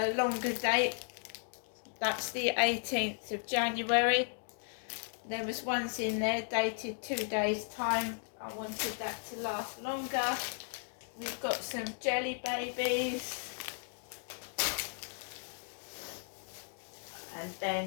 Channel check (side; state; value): right; silent; 54 dB below the other